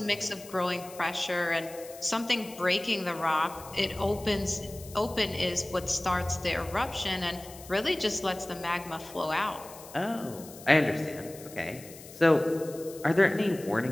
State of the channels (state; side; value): noise; left; hiss, 17 dB below the sound